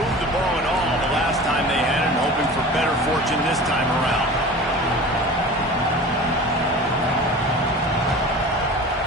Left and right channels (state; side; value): normal; both; correlation 0.37